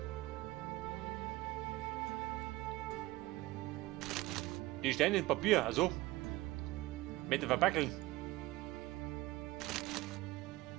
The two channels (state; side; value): quieter; left; 18.8 dB